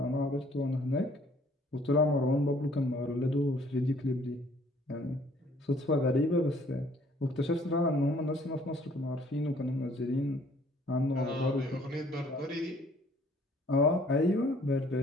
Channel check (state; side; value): normal; both; correlation 0.59